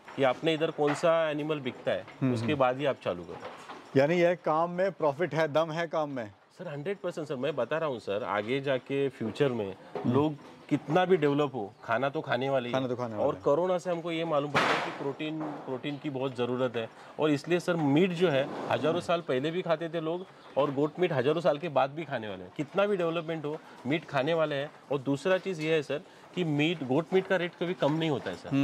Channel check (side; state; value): both; identical; correlation 1.00